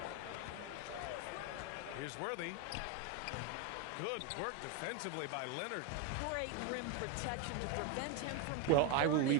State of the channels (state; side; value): different; both; correlation 0.02